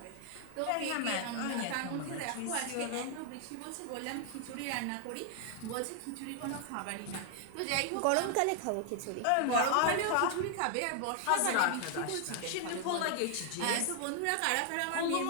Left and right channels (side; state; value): both; different; correlation 0.00